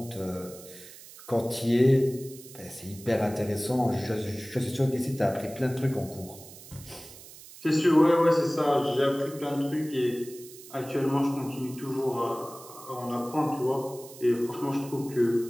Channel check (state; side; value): noise; right; hiss, 18 dB below the sound